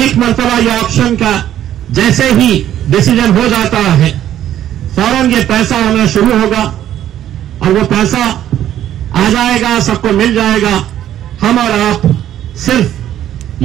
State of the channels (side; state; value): left; quieter; 11.6 dB